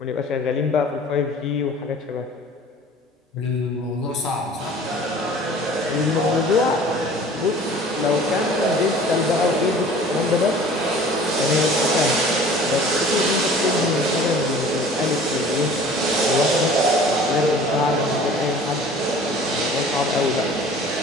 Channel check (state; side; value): normal; both; correlation 0.46